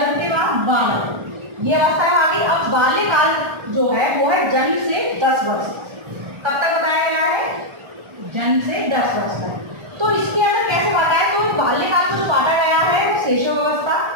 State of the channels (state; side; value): late; left; 1.3 ms